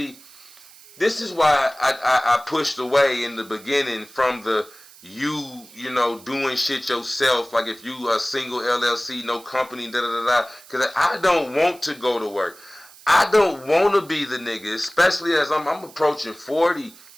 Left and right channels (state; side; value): noise; right; hiss, 22 dB below the sound